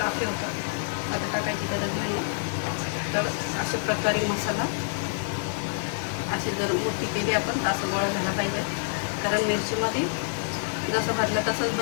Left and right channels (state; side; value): silent; right; digital silence